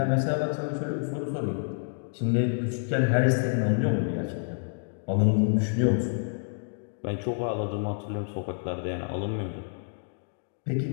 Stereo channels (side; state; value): right; silent; digital silence